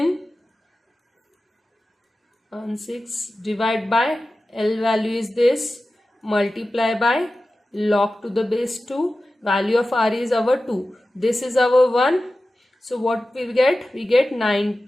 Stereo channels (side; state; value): both; normal; correlation 0.95